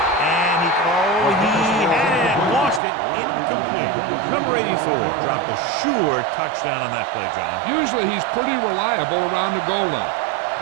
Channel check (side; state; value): left; drops out; at 2.8 s